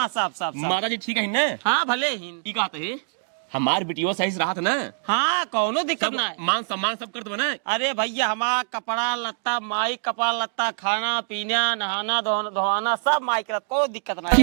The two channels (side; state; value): left; silent; digital silence